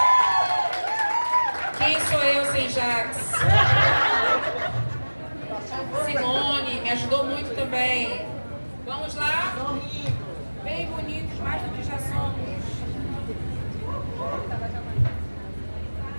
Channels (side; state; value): both; inverted; correlation -1.00